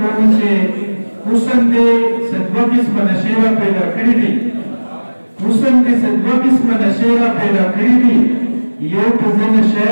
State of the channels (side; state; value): both; inverted; correlation -1.00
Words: چې حسن دې څه دوه قسمه نشې را پیدا کړي دي، حسن دې څه دوه قسمه نشې را پیدا کړي دي، یو په زه نشه